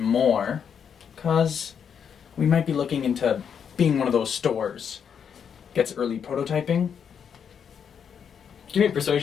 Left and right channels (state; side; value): quieter; right; 7.5 dB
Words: because we might be looking into being one of those stores. Gets early prototyping. Give me a